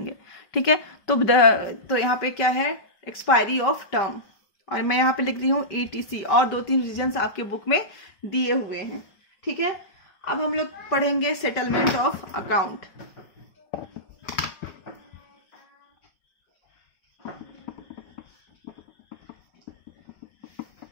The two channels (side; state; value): right; late; 5.2 ms